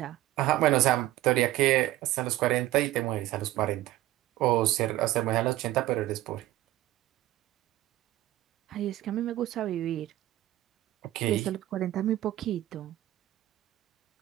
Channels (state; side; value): quieter; left; 15.4 dB